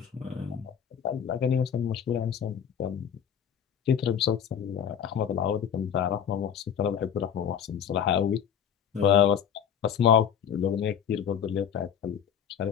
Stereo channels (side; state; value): right; quieter; 8.4 dB